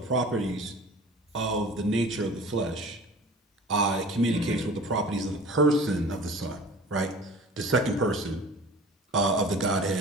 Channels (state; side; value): normal; both; correlation 0.42